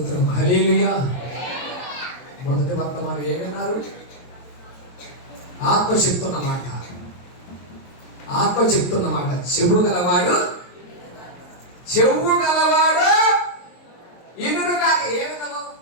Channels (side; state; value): right; late; 22 ms